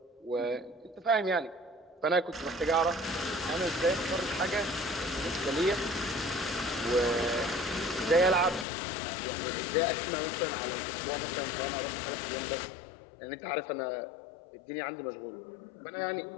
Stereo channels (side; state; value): right; drops out; at 8.7 s